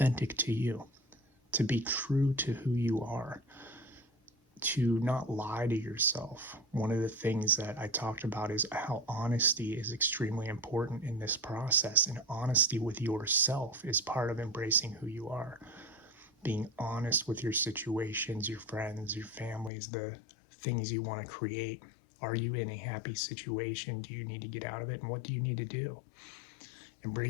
to you, to be true to who you are, to not lie to yourself. One of the things that I talked about is how honesty is extremely important in this process, and honesty with yourself is part of embracing who you are. Being honest with your situations, your friends, your families, the things you want to create. Are you in a happy situation? Do you need to get out of it? And what do you need to do?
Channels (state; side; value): drops out; right; at 19.7 s